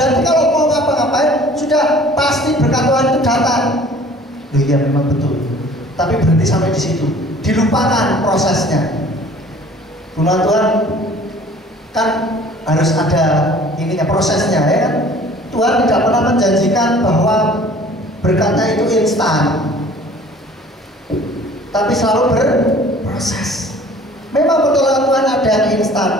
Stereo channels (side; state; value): both; normal; correlation 0.50